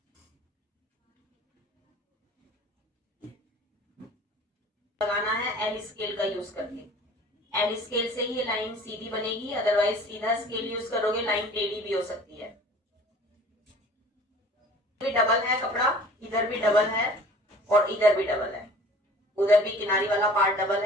लगाना है एल स्केल का यूज करके, एल स्केल से ही लाइन सीधी बनेगी, अदरवाइज सीधा स्केल यूज करोगे लाइन टेढ़ी भी हो सकती है। भी डबल है कपड़ा, इधर भी डबल है और इधर भी डबल है, उधर भी किनारी वाला पार्ट डबल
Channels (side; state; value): both; normal; correlation 0.47